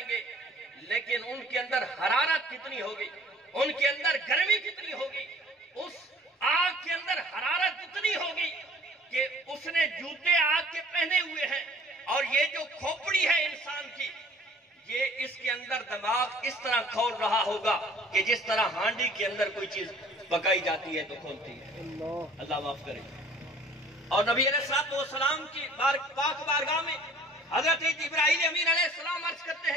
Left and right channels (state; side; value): normal; both; correlation 0.51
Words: گے، لیکن ان کے اندر حرارت کتنی ہوگی، ان کے اندر گرمی کتنی ہوگی، اس آگ کے اندر حرارت اتنی ہوگی کہ اس نے جوتے آگ کے پہنے ہوئے ہیں، اور یہ جو کھوپڑی ہے انسان کی یہ اس کے اندر دماغ اس طرح کھول رہا ہوگا کہ جس طرح ہانڈی کے اندر کوئی چیز پکائی جاتی ہے تو کھولتی ہے۔ اللہ معاف کرے۔ اور نبی علیہ الصلوۃ والسلام کی پاک بارگاہ میں حضرت جبرائیل امین علیہ السلام عرض کرتے